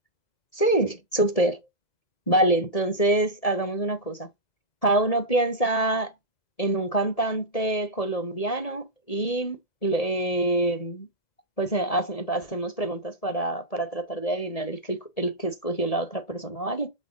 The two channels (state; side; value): late; right; 1.7 ms